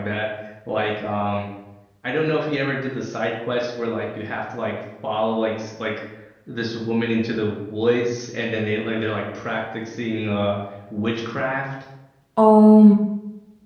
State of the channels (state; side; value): identical; both; correlation 1.00